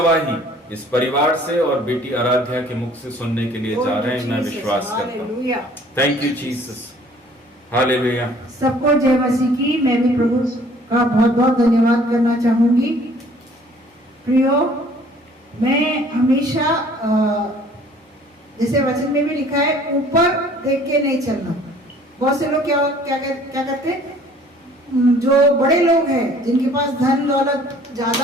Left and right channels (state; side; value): normal; both; correlation 0.55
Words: इस परिवार से और बेटी आराध्या के मुख से सुनने के लिए जा रहे हैं, मैं विश्वास करता हूँ। Thank you Jesus, hallelujah. सबको जय मसीह की। मैं भी प्रभु का बहुत बहुत धन्यवाद करना चाहूंगी। प्रियो, मैं हमेशा जैसे वचन में भी लिखा है, ऊपर देख के नहीं चलना। बहुत से लोग क्या करते हैं, जो बड़े लोग हैं जिनके पास धन दौलत